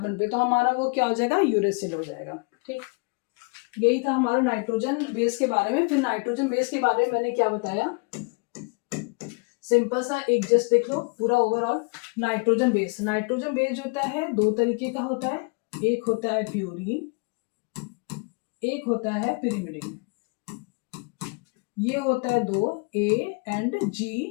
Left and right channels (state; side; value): quieter; right; 32.1 dB